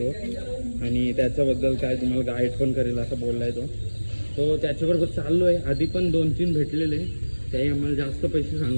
आणि त्याच्याबद्दल काय तुम्हाला गाईड पण करेल असं बोलला आहे तो. तो त्याच्याबरोबर चाललो आहे. आधी पण 2-3 भेटलेले, त्याही आम्हाला जास्त पैसे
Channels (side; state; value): both; inverted; correlation -1.00